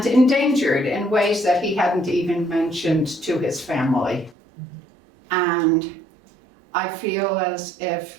endangered in ways that he hadn't even mentioned to his family. And I feel as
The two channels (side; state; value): left; drops out; at 4.4 s